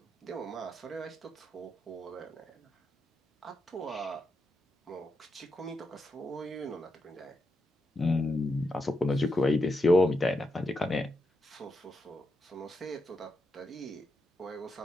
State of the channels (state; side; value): normal; both; correlation 0.85